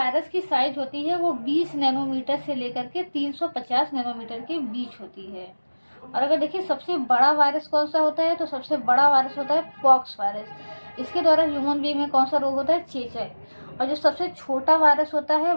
की साइज होती है वो 20 नैनोमीटर से लेकर के 350 नैनोमीटर के बीच होती है। और अगर देखिए सबसे बड़ा वायरस कौन सा होता है, तो सबसे बड़ा वायरस होता है पॉक्स वायरस। इसके द्वारा ह्यूमन बीइंग में कौन सा रोग होता है? चेचक। और जो सबसे छोटा वायरस होता है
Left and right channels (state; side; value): inverted; both; correlation -1.00